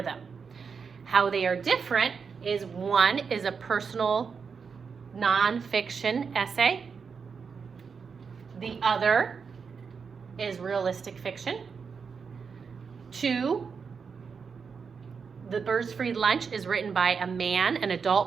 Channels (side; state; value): left; quieter; 5.8 dB